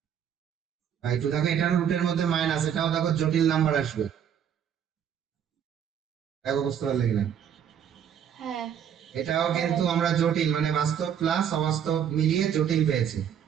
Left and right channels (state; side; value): quieter; left; 8.8 dB